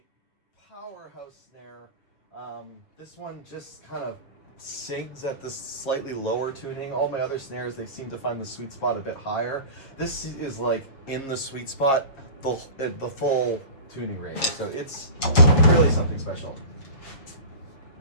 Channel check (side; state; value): right; late; 7.4 ms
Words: powerhouse snare. This one just kind of sings at this slightly lower tuning. All my other snares, they seem to find the sweet spot a bit higher. This is like in the sweet spot, the full tuning range. So it's really something special.